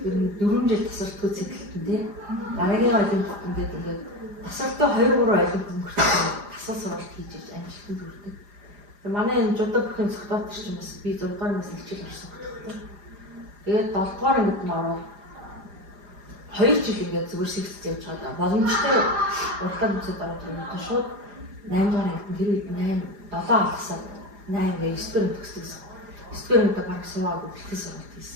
ер нь 4 жил тасардгүй цэглэлтэн тий. Дараагийн олимпиад ингээд тасарч тасралтаа 2-3 айлын өнгөрсөн тасал сургалт хийж иж амжилтанд хүрдэг. Манай энэ жудаа бүхэн цогтоод ч юм бас би 6 дугаар ангиас хичээл орсон хөтөлбөр. Тэгээд 7 дугаар ангид нь ороод 2 жил ингээд зүгээр сэгцэж явж байгаа. Боломжтой уртаа нүцэд ороод ирсэн шууд 8 дугаар ангид нь тэр үед 7 алгасаад 8 гээ 9 дугаар төгсдөгсөн. 9 дугаар ангид баг суугаад бэлтгэл сургалт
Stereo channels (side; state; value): left; late; 4.9 ms